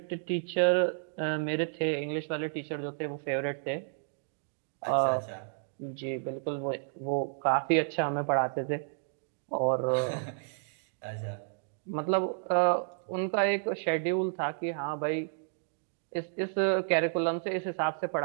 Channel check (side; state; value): left; silent; digital silence